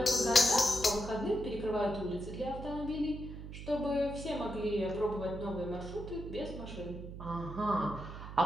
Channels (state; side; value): noise; right; hum, 10 dB below the sound